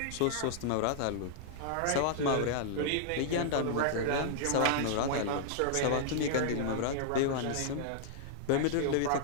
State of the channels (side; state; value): both; different; correlation -0.01